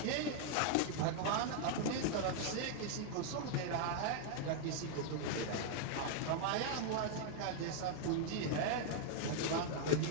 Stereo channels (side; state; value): both; different; correlation 0.00